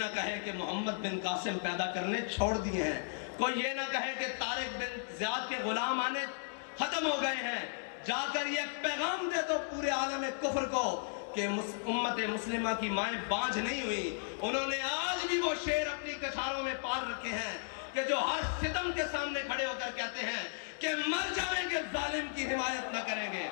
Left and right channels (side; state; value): right; silent; digital silence